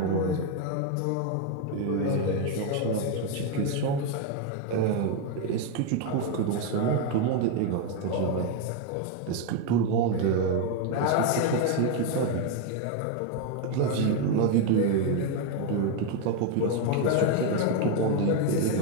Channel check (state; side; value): different; both; correlation 0.01